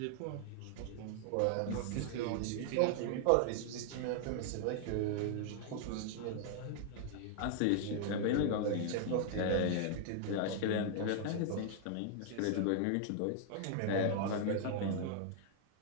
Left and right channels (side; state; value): both; different; correlation 0.00